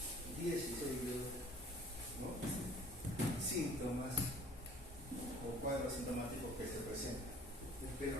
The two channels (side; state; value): both; normal; correlation 0.52